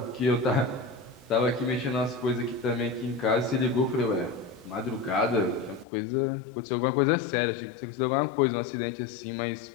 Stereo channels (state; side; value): drops out; right; at 5.9 s